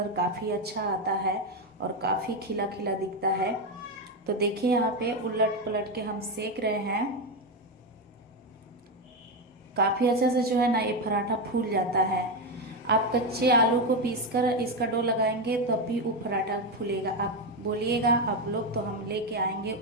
काफ़ी अच्छा आता है और काफ़ी खिला खिला दिखता है। तो देखिए यहाँ पे उलट पलट के हम सेक रहे हैं। काफ़ी अच्छे से जो है ना ये पराठा फूल जाता है। आप कच्चे आलू को पीसकर इसका डो लगाएंगे तब भी वो पराठा फूलेगा। आप बोलिएगा आप लोग तो हम लेके आएंगे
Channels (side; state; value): both; normal; correlation 0.10